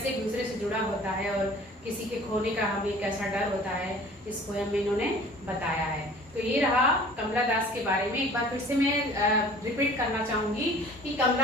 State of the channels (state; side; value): normal; both; correlation 0.48